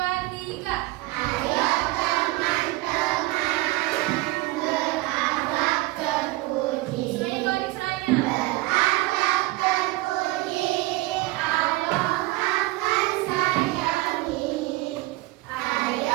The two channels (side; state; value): left; quieter; 19.9 dB